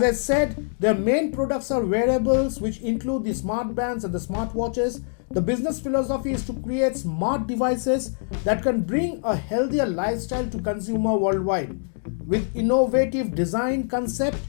I said, their main products are wearables, which include the smart bands and the smartwatches. The business philosophy is to create smart devices that can bring a healthier lifestyle to consumer worldwide. With innovative design concept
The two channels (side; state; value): right; silent; digital silence